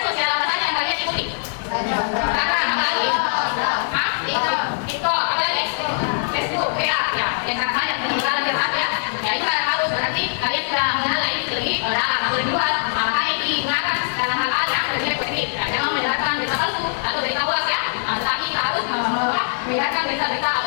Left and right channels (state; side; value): silent; right; 64 dB below the other